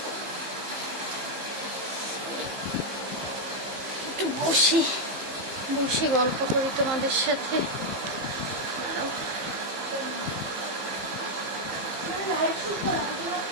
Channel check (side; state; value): left; late; 15 ms